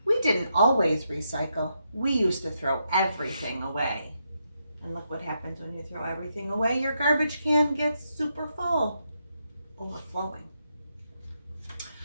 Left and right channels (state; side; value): inverted; both; correlation -0.81